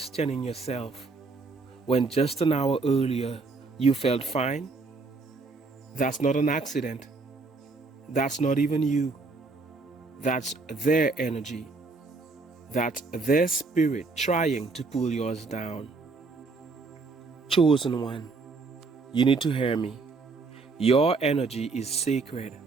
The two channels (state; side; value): quieter; left; 3.9 dB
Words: yourself when just an hour earlier you felt fine? That's not an accident. That's not even you. That's their energy. That's their spirit trying to pull yours down. Chosen one, you need to hear me. Your energy is sacred.